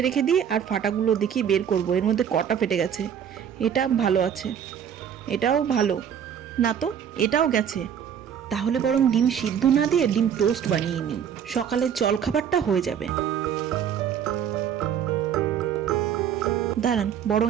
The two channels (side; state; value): left; quieter; 8.6 dB